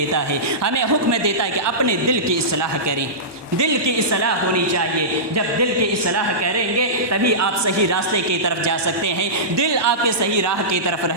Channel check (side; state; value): left; late; 1.2 ms